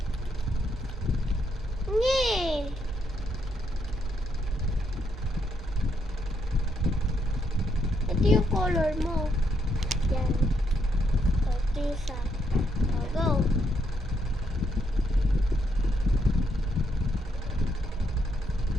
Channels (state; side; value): noise; right; hum, 12 dB below the sound